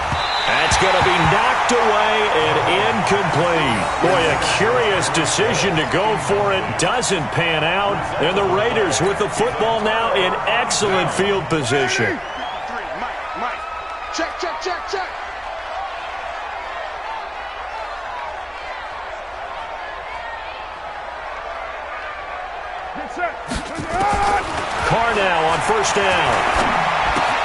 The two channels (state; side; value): identical; both; correlation 1.00